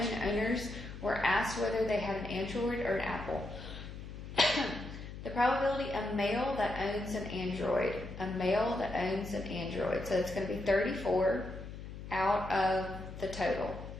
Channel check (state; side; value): noise; left; hum, 11 dB below the sound